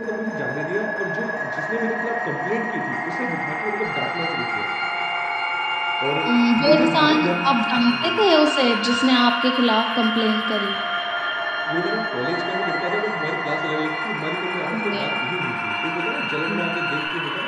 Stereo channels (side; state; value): both; identical; correlation 1.00